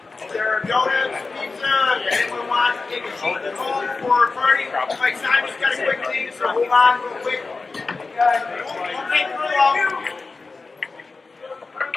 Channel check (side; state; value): right; quieter; 4.0 dB